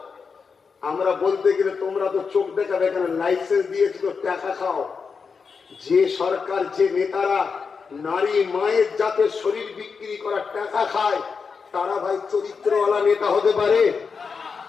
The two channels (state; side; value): quieter; right; 5.4 dB